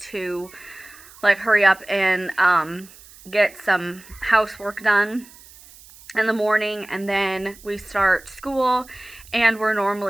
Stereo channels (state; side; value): noise; right; hiss, 22 dB below the sound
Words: to like hurry up and get some housework done in the morning, and then we start school, and we're